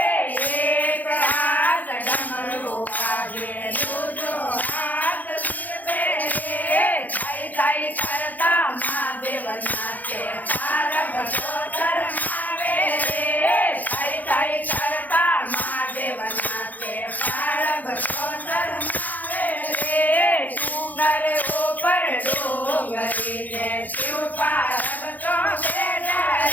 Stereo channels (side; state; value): right; late; 0.082 ms